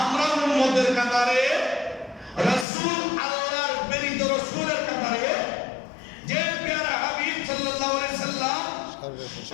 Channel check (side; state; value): right; drops out; at 2.7 s